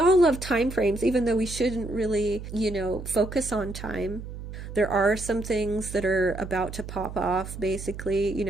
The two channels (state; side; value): noise; right; hum, 10 dB below the sound